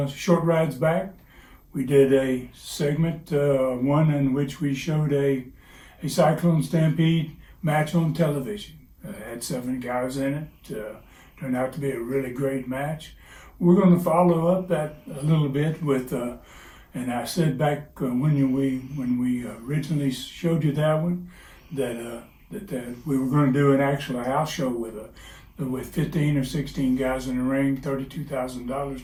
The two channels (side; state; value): both; identical; correlation 1.00